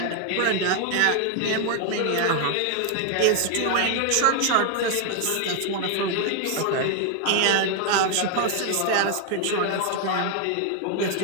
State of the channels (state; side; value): different; both; correlation 0.00